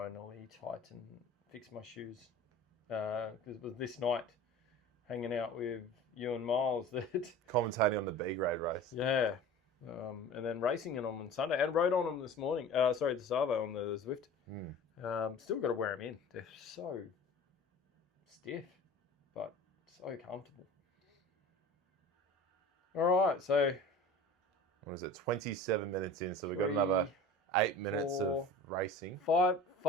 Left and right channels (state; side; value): normal; both; correlation 0.39